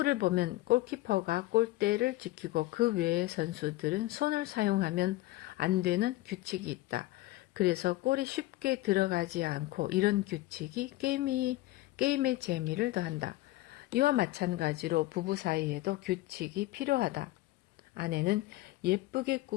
보면 골키퍼가 골대를 지키고 그 외의 선수들은 손을 사용하면 안 되는 규칙이 있다. 그래서 골이 쉽게 들어가지 않고 이런 규칙이 게임의 재미를 더한다. 이와 마찬가지로 부부 사이에도 규칙이 필요하다. 아내는 예쁘게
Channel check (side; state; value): right; quieter; 17.9 dB